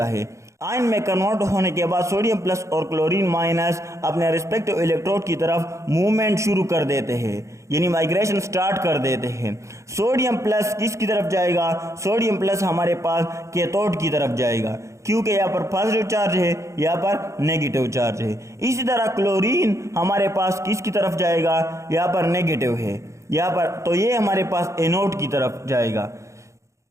है। आयन में कन्वर्ट होने के बाद सोडियम प्लस और क्लोरीन माइनस अपने रिस्पेक्टिव इलेक्ट्रोड की तरफ मूवमेंट शुरू कर देते हैं, यानी माइग्रेशन स्टार्ट कर देते हैं। सोडियम प्लस किसकी तरफ जाएगा, सोडियम प्लस हमारे पास कैथोड की तरफ जाएगा, क्योंकि यहाँ पर पॉजिटिव चार्ज है, यहाँ पर नेगेटिव चार्ज है। इसी तरह क्लोरीन हमारे पास किसकी तरफ जाएगा, यहाँ पर नेगेटिव है, यहाँ पर, तो ये हमारे पास एनोड की तरफ जाएगा।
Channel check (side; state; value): left; late; 0.14 ms